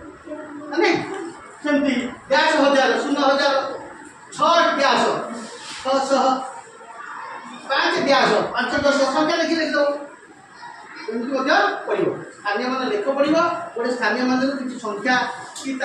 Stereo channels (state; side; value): identical; both; correlation 1.00